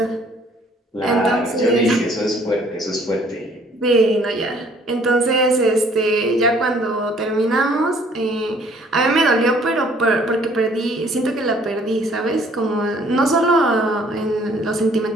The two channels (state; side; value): normal; both; correlation 0.59